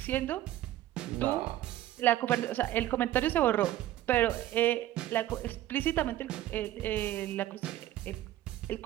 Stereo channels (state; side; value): quieter; left; 13.9 dB